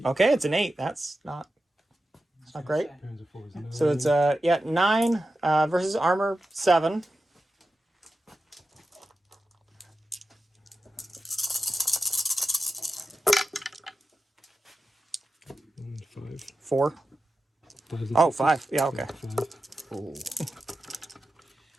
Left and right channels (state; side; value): normal; both; correlation 0.92